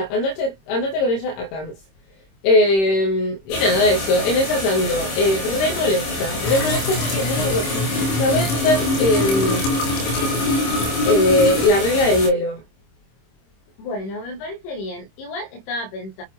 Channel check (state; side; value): late; right; 26 ms